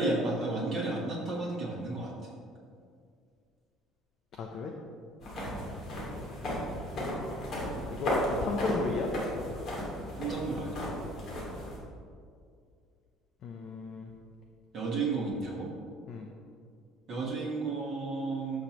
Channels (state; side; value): normal; both; correlation 0.53